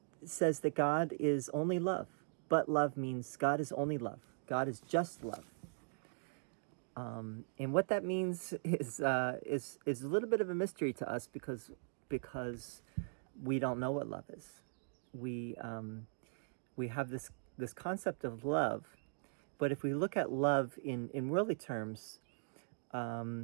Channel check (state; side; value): silent; left; digital silence